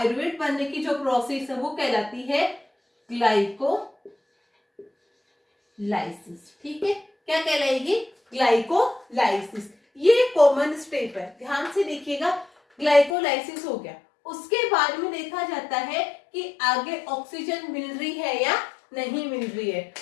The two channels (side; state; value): right; drops out; at 13.2 s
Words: बनने की जो प्रोसेस है वो कहलाती है ग्लाइकोलाइसिस। ठीक है, क्या कहलाएगी, ग्लाइकोलाइसिस। ये कॉमन स्टेप है, ध्यान से देखिएगा। ग्लाइकोलाइसिस हो गया, उसके बाद में देखा जाता है कि आगे ऑक्सीजन मिल रही है या नहीं मिल रही है,